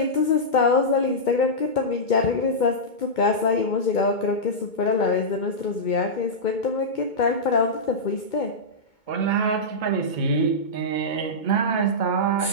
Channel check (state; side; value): late; right; 2.2 ms